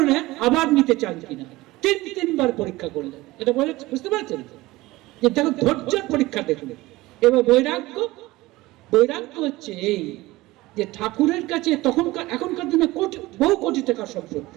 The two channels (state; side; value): quieter; left; 19.3 dB